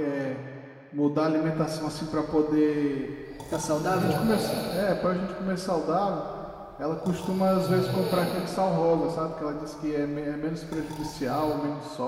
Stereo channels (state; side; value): identical; both; correlation 1.00